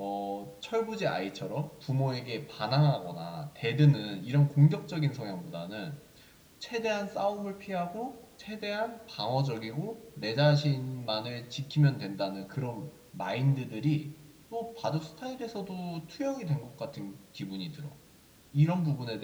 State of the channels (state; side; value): identical; both; correlation 1.00